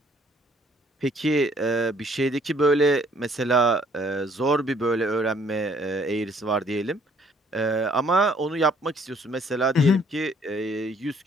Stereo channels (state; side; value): normal; both; correlation 0.62